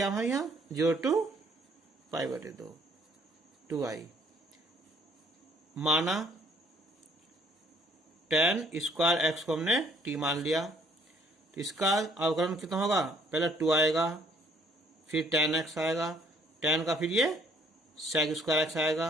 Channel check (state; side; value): normal; both; correlation 0.62